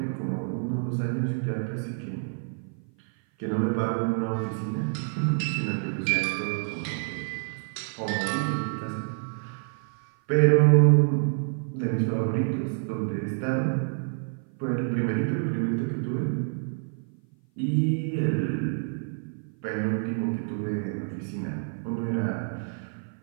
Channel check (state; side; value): silent; left; 55 dB below the other